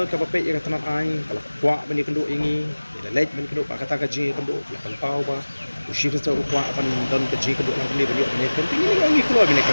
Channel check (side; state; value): both; inverted; correlation -1.00